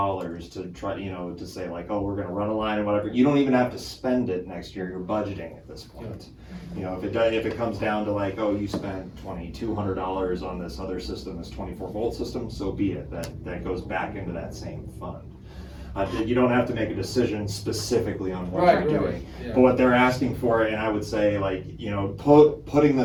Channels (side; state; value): both; identical; correlation 1.00